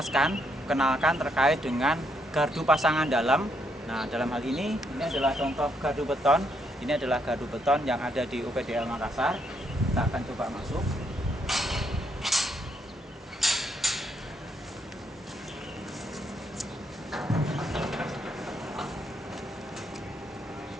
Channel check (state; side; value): normal; both; correlation 0.76